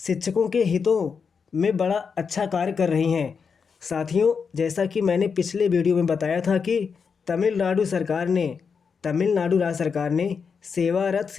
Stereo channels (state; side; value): quieter; right; 5.9 dB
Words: के हितों में बड़ा अच्छा कार्य कर रही हैं। साथियों जैसा कि मैंने पिछले वीडियो में बताया था कि तमिलनाडु राज्य सरकार ने सेवारत